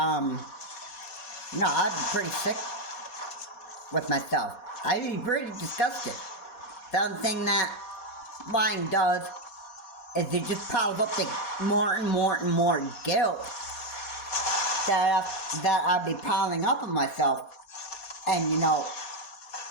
pretty sick with myself. I'd be pretty disgusted. The other thing that lying does is it just piles up the more and more and more guilt that I'd be piling up on myself. And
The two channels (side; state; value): right; late; 4.2 ms